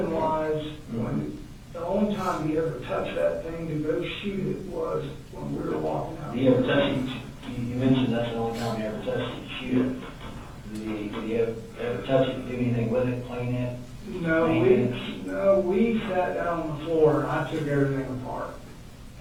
when the only time he ever touched that thing to go shoot it was when we were walking out. Did he ever touch it? You mentioned that's the only time he ever touched it, shoot it. Did he ever touch it, do anything with it, clean it? No, we sat down on the floor and I took everything apart.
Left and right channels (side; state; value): both; identical; correlation 1.00